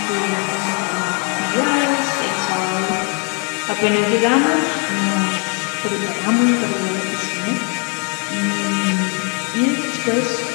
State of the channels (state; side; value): quieter; right; 37.5 dB